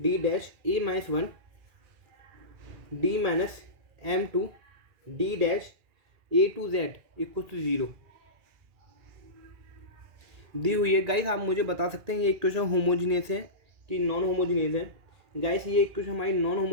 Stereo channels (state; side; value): late; left; 2.4 ms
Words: dash a minus 1 d minus m two d dash a two z equal to 0 दी हुई है। गाइस आप मुझे बता सकते हैं ये इक्वेशन होमोजीनियस है कि नॉन होमोजीनियस है। गाइस ये इक्वेशन हमारी नॉन